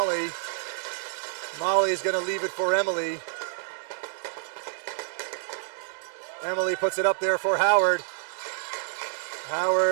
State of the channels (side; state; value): left; silent; digital silence